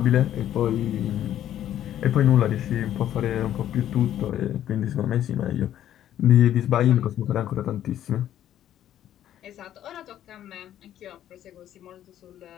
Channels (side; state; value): right; quieter; 11.5 dB